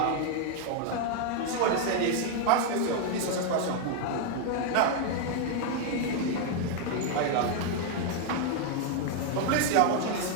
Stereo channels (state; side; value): different; both; correlation 0.00